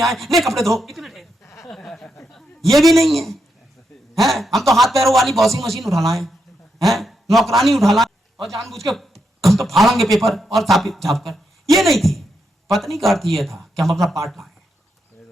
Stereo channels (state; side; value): normal; both; correlation 0.83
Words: आए, ले कपड़े धो, इतने ये भी नहीं है, हैं? हम तो हाथ पैरों वाली वॉशिंग मशीन उठा लाए हैं, नौकरानी उठा लाए, और जानबूझ के हम तो फाड़ेंगे पेपर और छाप कर। ये नहीं थी। पत्नी का अर्थ ये था कि हम अपना पार्ट लाए,